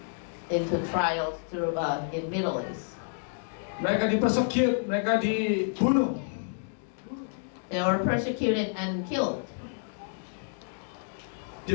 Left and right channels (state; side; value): silent; right; digital silence